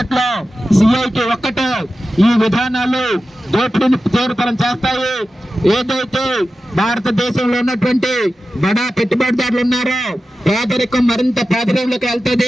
సిఐటి ఒక్కటే ఈ విధానాలు దోపిడీని తీవ్రతరం చేస్తాయి, ఏదైతే భారతదేశంలో ఉన్నటువంటి బడా పెట్టుబడిదారులు ఉన్నారో పేదరికం మరింత పేదరికంలోకి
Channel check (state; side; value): normal; both; correlation 0.93